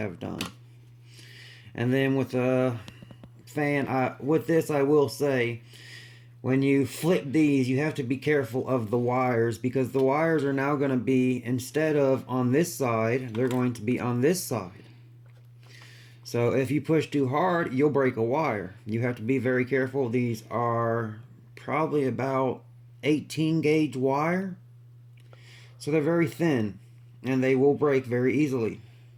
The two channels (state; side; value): identical; both; correlation 1.00